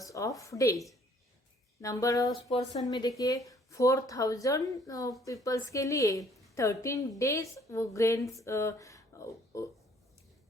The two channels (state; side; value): normal; both; correlation 0.60